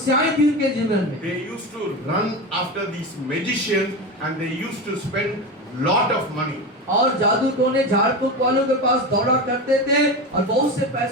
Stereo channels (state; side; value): normal; both; correlation 0.22